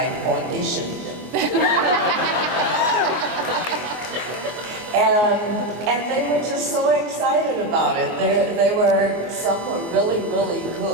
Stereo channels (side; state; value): left; late; 24 ms